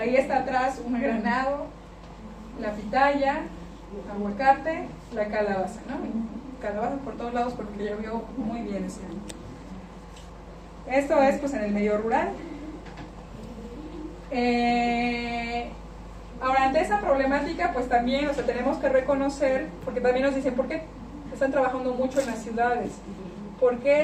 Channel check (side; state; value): both; identical; correlation 1.00